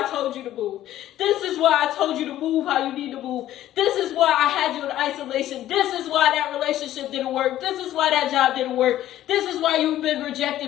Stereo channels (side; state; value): right; quieter; 13.2 dB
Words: I told you to move. This is why I told you to move how you need to move. This is why I had you in isolation. This is why that relationship didn't work. This is why that job didn't work. This is why you've been